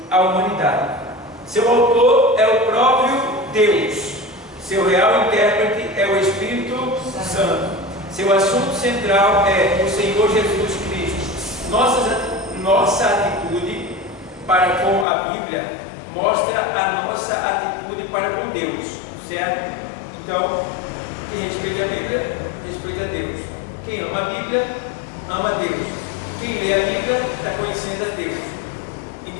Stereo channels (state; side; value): drops out; right; at 15.1 s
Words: à humanidade. Seu autor é o próprio Deus. Seu real intérprete é o Espírito Santo. Seu assunto central é o Senhor Jesus Cristo. Nossa atitude para com a Bíblia mostra a nossa atitude para com Deus, certo? Então, quem respeita a Bíblia, respeita a Deus. Quem ama a Bíblia, ama a Deus. Quem lê a Bíblia está conhecendo a Deus.